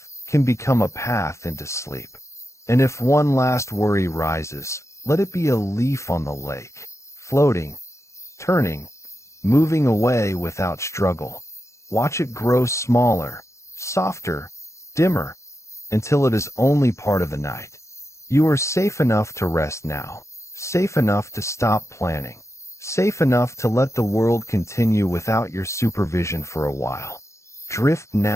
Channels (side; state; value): right; late; 0.14 ms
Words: can become a path into sleep. And if one last worry rises, let it be a leaf on the lake, floating, turning, moving away without struggle. Watch it grow smaller, softer, dimmer, until it is only part of the night. You are safe enough to rest now, safe enough to stop planning, safe enough to let the world continue without your supervision for a while. Drift